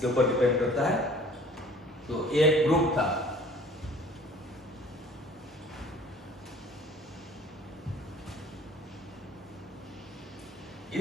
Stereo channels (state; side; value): normal; both; correlation 0.51